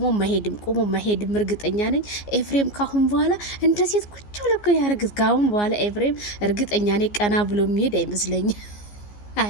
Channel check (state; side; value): late; right; 14 ms